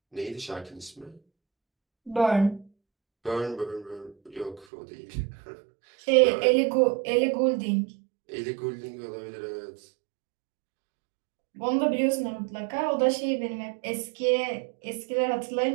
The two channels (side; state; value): left; drops out; at 4.7 s